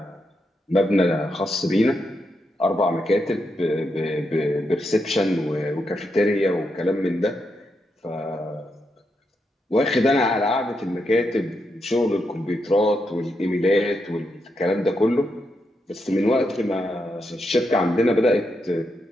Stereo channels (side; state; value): both; normal; correlation 0.83